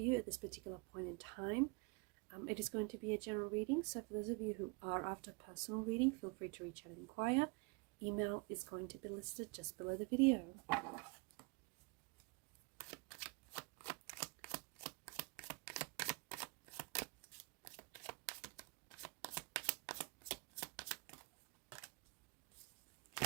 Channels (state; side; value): quieter; left; 31.4 dB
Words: at this particular point in time. It is going to be a general reading, so for those of you who are after personal reading, feel free to reach out and inquire. Email is going to be listed just below the video.